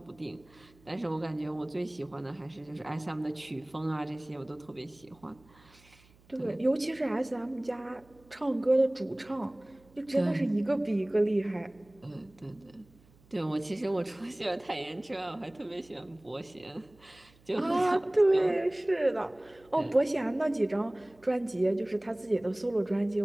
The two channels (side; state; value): right; noise; hum, 28 dB below the sound